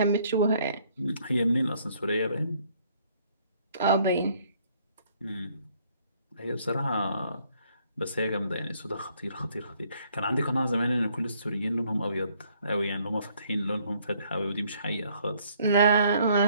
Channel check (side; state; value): both; inverted; correlation -0.65